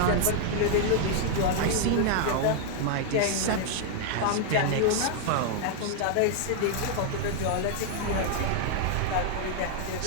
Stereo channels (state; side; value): different; both; correlation 0.00